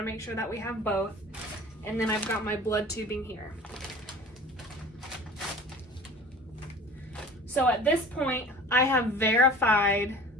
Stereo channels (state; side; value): normal; both; correlation 0.42